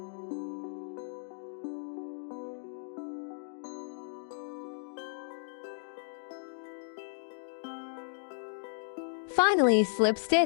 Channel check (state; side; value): silent; right; digital silence